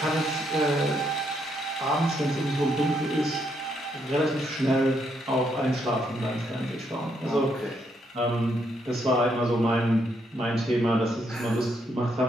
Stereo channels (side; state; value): both; normal; correlation 0.75